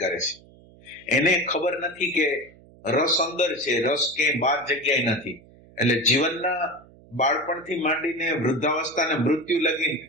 કરે છે. એને ખબર નથી કે રસ અંદર છે, રસ ક્યાંય બાર જગ્યાએ નથી. એટલે જીવનના બાળપણથી માંડીને વૃદ્ધાવસ્થા અને મૃત્યુ લગીને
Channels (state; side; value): noise; right; hum, 25 dB below the sound